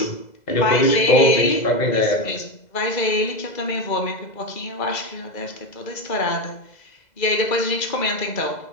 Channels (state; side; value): late; right; 2.0 ms